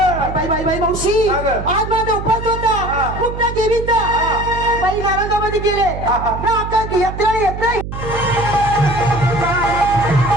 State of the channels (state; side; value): noise; right; hum, 8 dB below the sound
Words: बाई बाई बाई मावशी हा गं. आज माझा उपास हा. होता कुठल्या देवीचा बाई नारंगामध्ये गेले हा, हा. ना आता यात्रा येत नाही